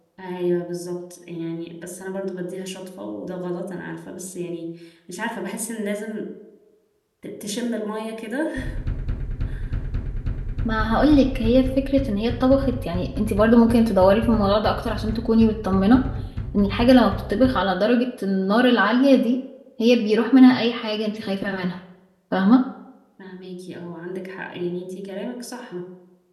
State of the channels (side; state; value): both; identical; correlation 1.00